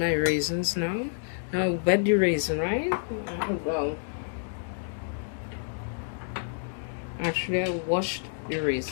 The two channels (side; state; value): right; silent; digital silence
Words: raisins now. Now wet the raisin, right? Well, actually I washed the